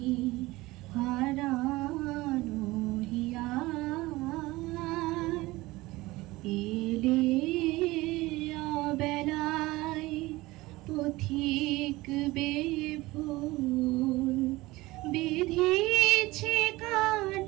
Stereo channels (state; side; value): quieter; left; 19.9 dB